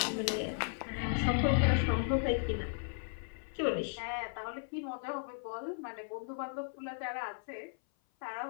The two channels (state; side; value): silent; right; 54 dB below the other